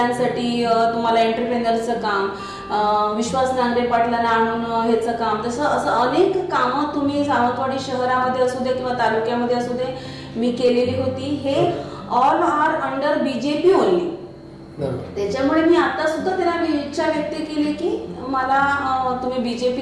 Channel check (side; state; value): both; identical; correlation 1.00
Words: तुम्हाला एंटरप्रेनरचं काम, विश्वास नांगरे पाटलांना आणून ह्याचं काम, तसं असं अनेक कामं तुम्ही सावंतवाडी शहरामध्ये असू दे किंवा तालुक्यामध्ये असू दे मी केलेली होती. हे all are under BJP only. त्याच्यामुळे मी आता सुद्धा त्यांना इच्छा व्यक्त केली की मला तुम्ही